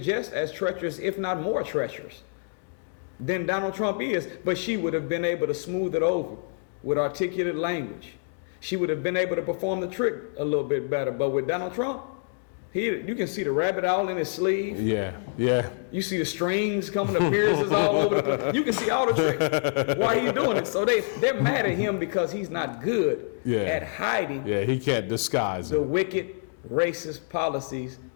just as treacherous, if not more treacherous, than Donald Trump is. But she would have been able to smooth it over with articulate language. She would have been able to perform the trick a little bit better. But with Donald Trump, you can see the rabbit all in his sleeve. Yeah. You see the strings coming, the mirrors all over the place. You can see all the tricks while he's doing it. So they're mad at him because he's not good at hiding. Yeah, he can't disguise the wicked, racist policies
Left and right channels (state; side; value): silent; right; digital silence